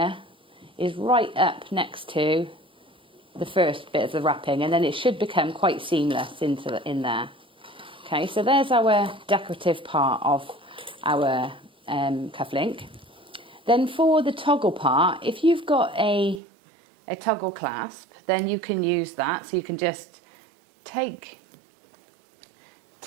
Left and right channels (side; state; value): left; drops out; at 16.4 s